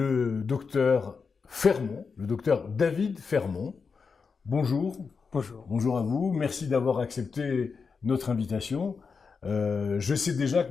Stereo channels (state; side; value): quieter; right; 5.3 dB